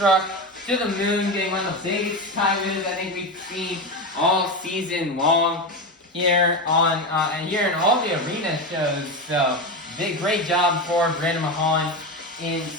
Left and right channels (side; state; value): both; normal; correlation 0.18